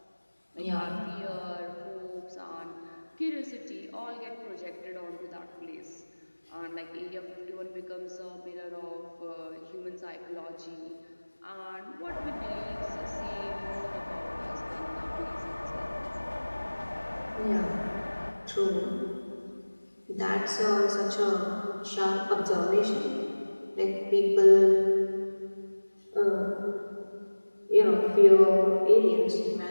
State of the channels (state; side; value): inverted; both; correlation -1.00